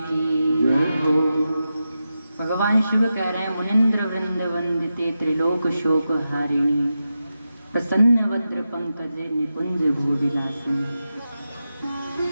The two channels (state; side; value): inverted; both; correlation -0.90